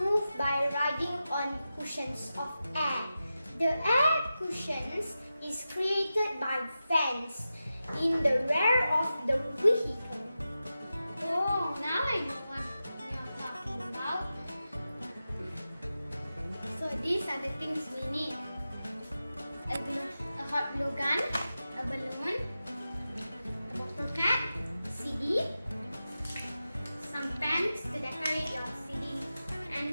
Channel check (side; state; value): both; inverted; correlation -0.92